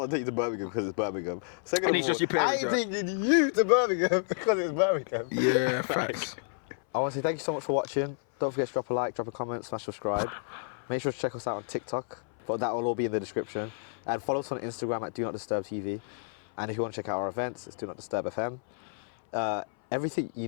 to take you to Birmingham because it's Birmingham. Second of all, I ain't taking you to Birmingham because it's Birmingham. Yeah, facts. I want to say thank you so much for watching. Don't forget to drop a like, drop a comment, smash subscribe. Make sure to check us out on TikTok, but that will all be in the description. And follow us on Instagram at DONOTDISTURBTV. And if you want to check out our events, it's DONOTDISTURBFM. Everything you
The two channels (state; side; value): silent; right; 58 dB below the other